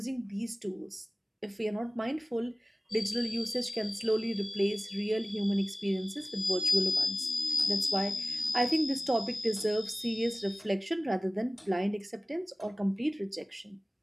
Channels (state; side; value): normal; both; correlation 0.97